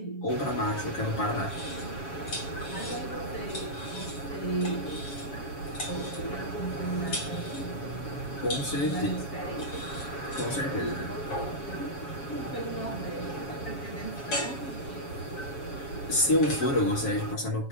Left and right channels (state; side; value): late; right; 7.2 ms